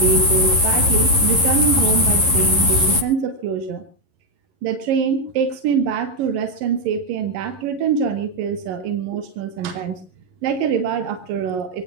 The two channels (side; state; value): left; late; 11 ms